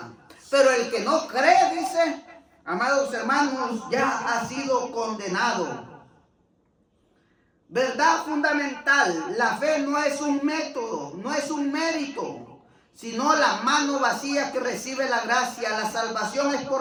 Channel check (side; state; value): both; identical; correlation 1.00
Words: Pero el que no cree, dice, amados hermanos, ya ha sido condenado. Verdad fundamental, la fe no es un método, no es un mérito, sino la mano vacía que recibe la gracia. La salvación es